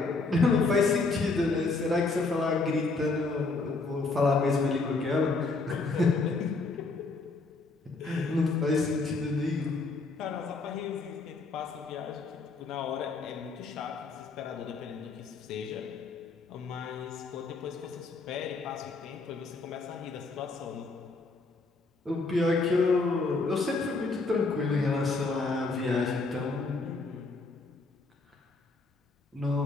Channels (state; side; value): quieter; right; 3.7 dB